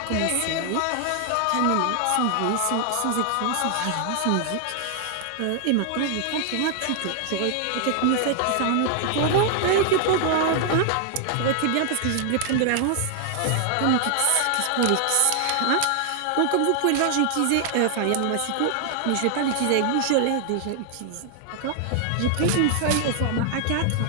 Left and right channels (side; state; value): both; different; correlation 0.00